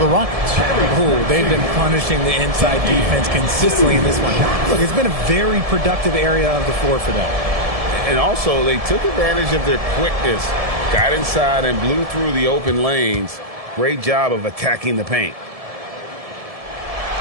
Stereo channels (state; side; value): late; left; 1.7 ms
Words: Rockets. Oh, they've been punishing the inside defense consistently in this one. Look, it's been a very productive area of the floor for them. And also, they took advantage of their quickness, got inside and blew through the open lanes. Great job of attacking the paint.